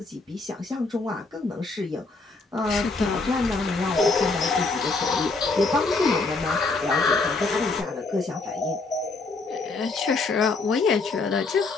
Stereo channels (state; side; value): quieter; right; 3.7 dB